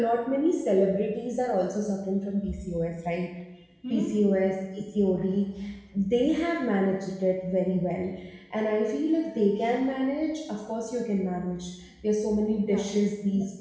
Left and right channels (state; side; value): identical; both; correlation 1.00